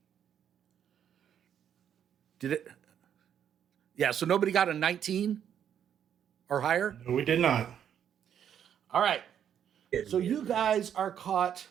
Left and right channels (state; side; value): quieter; left; 9.1 dB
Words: Did it? Yeah, so nobody got a 19 or higher? No, we did not. All right. So you guys are caught